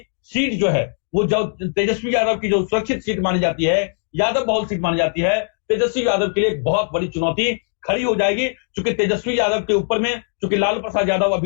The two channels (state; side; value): silent; right; digital silence